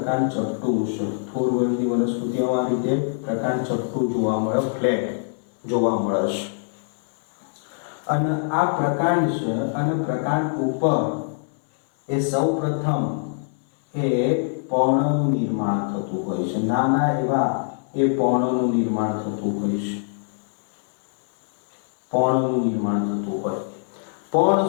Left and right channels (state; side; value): silent; right; 63 dB below the other